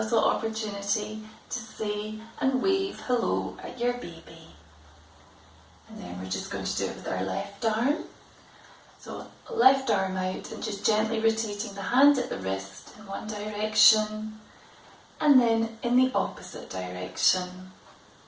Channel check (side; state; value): both; identical; correlation 1.00